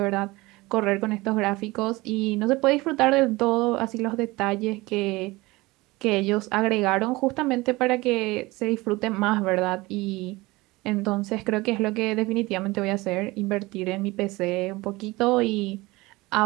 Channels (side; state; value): left; quieter; 21.4 dB